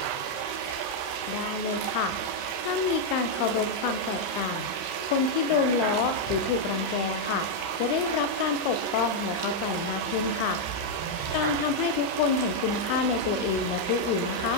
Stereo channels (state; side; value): late; right; 35 ms